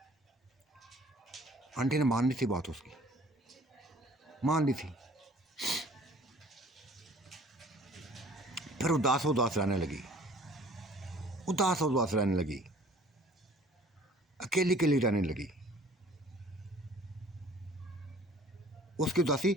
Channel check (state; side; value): normal; both; correlation 0.52